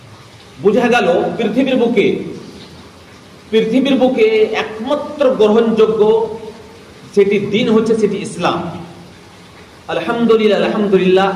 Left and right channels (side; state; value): both; identical; correlation 1.00